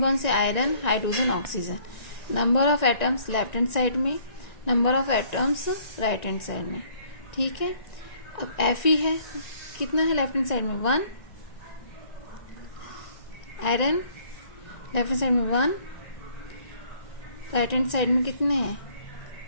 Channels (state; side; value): late; right; 1.9 ms